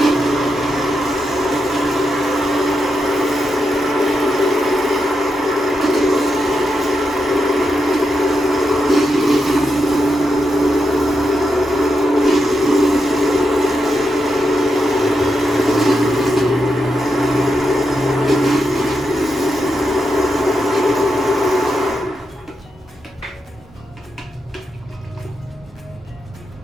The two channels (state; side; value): normal; both; correlation 0.85